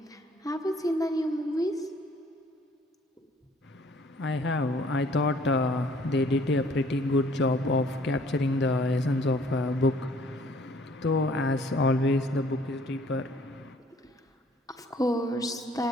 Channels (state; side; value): normal; both; correlation 0.59